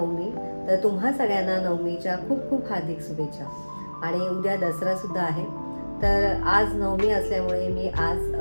तर तुम्हा सगळ्यांना नवमीच्या खूप खूप हार्दिक शुभेच्छा. आणि उद्या दसरा सुद्धा आहे. तर आज नवमी असल्यामुळे मी आज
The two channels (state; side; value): inverted; both; correlation -1.00